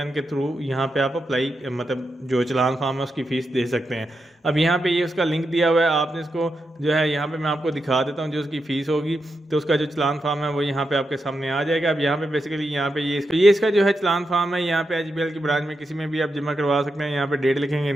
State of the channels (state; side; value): normal; both; correlation 0.86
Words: के थ्रू यहाँ पे आप अप्लाई मतलब जो चलान फार्म है उसकी फ़ीस दे सकते हैं। अब यहाँ पे ये उसका लिंक दिया हुआ है, आपने इसको जो है यहाँ पे मैं आपको दिखा देता हूँ जो उसकी फ़ीस होगी। तो उसका जो चलान फार्म है वो यहाँ पे आपके सामने आ जाएगा। अब यहाँ पे बेसिकली यहाँ पे ये इसका जो है चलान फार्म है, यहाँ पे एचबीएल की ब्रांच में किसी में भी आप जमा करवा सकते हैं। यहाँ पे डेट लिखेंगे,